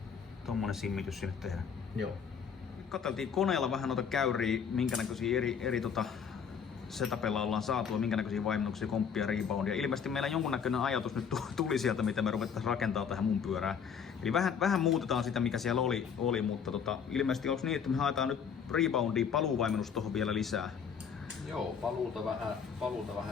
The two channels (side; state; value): right; quieter; 6.9 dB